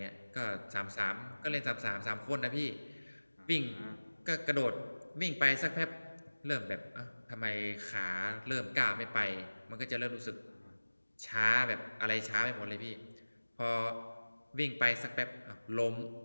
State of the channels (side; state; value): both; inverted; correlation -1.00